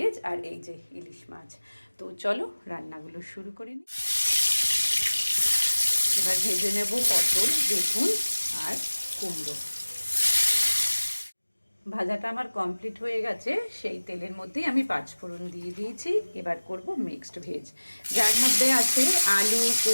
আর এই যে ইলিশ মাছ। তো চলো রান্নাগুলো শুরু করে নিই। এবার ভেজে নেব পটল, বেগুন আর কুমড়ো। ভাজাটা আমার কমপ্লিট হয়ে গেছে। সেই তেলের মধ্যেই আমি পাঁচফোড়ন দিয়ে দিয়েছি। এবার করব মিক্সড ভেজ, যার মধ্যে আছে আলু,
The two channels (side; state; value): both; inverted; correlation -1.00